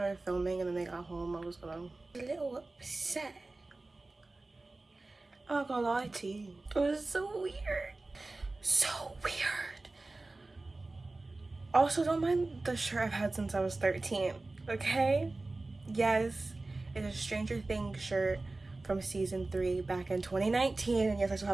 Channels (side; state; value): left; quieter; 3.2 dB